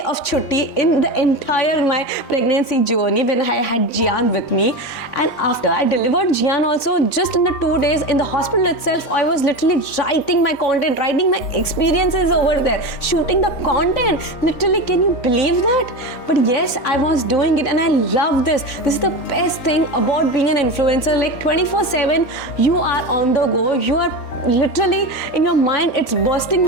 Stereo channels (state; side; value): late; right; 3.9 ms